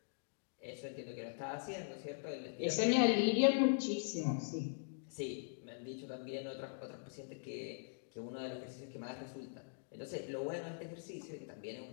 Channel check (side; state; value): right; silent; digital silence